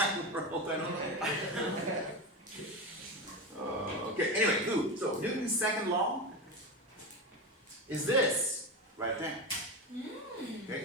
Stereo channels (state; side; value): normal; both; correlation 0.20